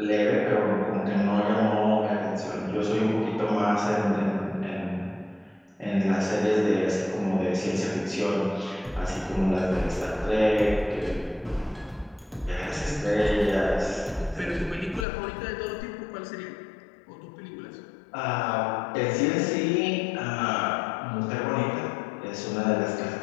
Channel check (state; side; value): drops out; right; at 15.1 s